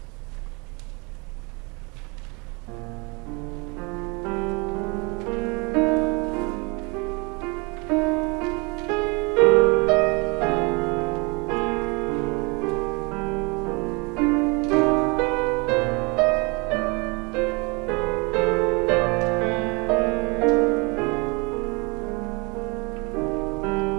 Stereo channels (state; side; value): quieter; left; 29.5 dB